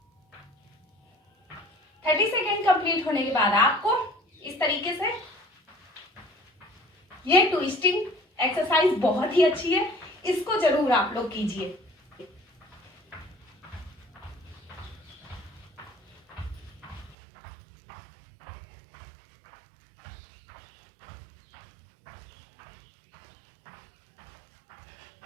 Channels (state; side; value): drops out; left; at 17.2 s